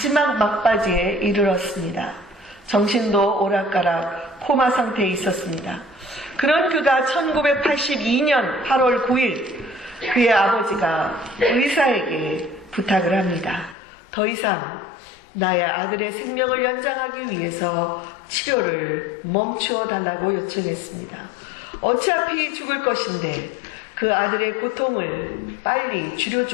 막바지에 이르렀습니다. 정신도 오락가락 코마 상태에 있었습니다. 그런 그가 1982년 8월 9일 그의 아버지가 의사에게 부탁을 합니다. 더 이상 나의 아들의 생명을 연장하기 위해서 치료를 멈추어 달라고 요청했습니다. 어차피 죽을 것인데 그 아들의 고통을 빨리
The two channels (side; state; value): right; drops out; at 13.8 s